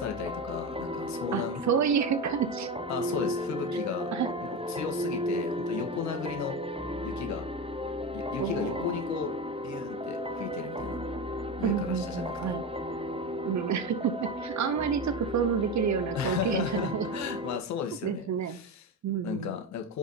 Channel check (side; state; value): both; normal; correlation 0.21